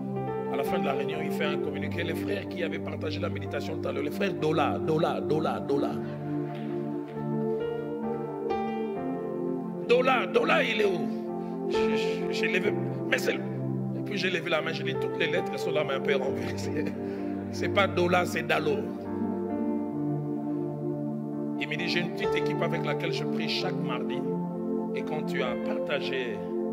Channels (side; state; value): both; identical; correlation 1.00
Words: À la fin de la réunion, il fait un communiqué. Les frères qui avaient partagé la méditation tout à l'heure, les frères Dola. Dola, il est où? J'ai levé, mais c'est... Et puis j'ai levé la main, j'ai dit toutes les lettres sont là, mais un peu renversées. C'est pas Dola, c'est Dalo. Il me dit, j'ai une petite équipe avec laquelle je prie chaque mardi. Et quand tu as partagé